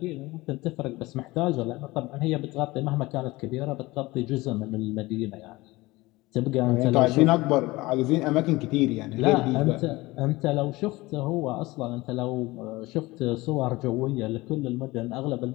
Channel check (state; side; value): quieter; right; 20.6 dB